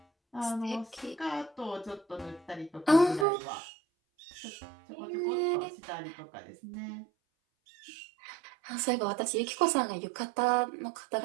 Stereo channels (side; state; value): left; drops out; at 3.2 s